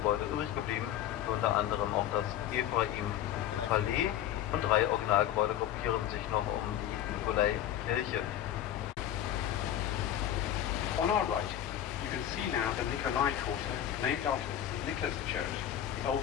übrig geblieben, unter anderem auch das Ephraim-Palais, und 3 Originalgebäude gruppieren sich noch um die Nikolaikirche. On our right, you can see now the Nikolai Quarter, named after the St. Nicholas Church, the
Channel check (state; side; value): quieter; right; 11.4 dB